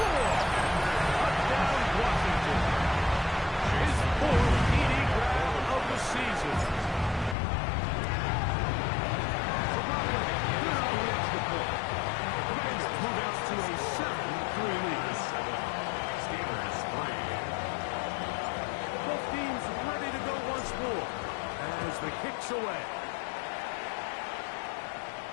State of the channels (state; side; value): drops out; right; at 7.4 s